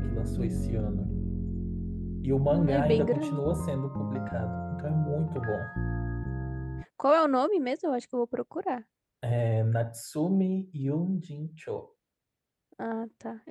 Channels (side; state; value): both; identical; correlation 1.00